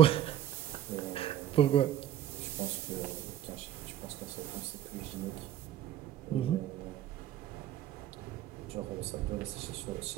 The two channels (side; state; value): left; quieter; 11.5 dB